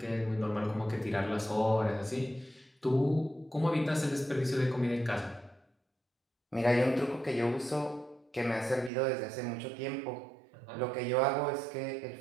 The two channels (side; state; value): left; drops out; at 8.9 s